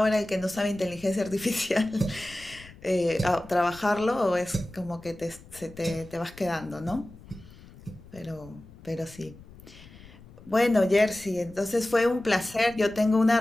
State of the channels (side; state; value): left; noise; rumble, 20 dB below the sound